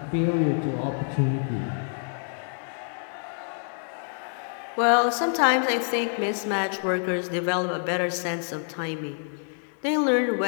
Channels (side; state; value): right; silent; 60 dB below the other